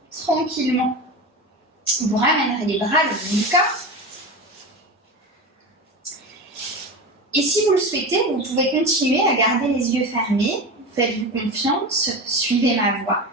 tranquillement. Vous ramènerez les bras le long du corps. Et si vous le souhaitez, vous pouvez continuer à garder les yeux fermés. Faites-vous confiance, suivez ma voix.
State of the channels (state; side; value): normal; both; correlation 0.25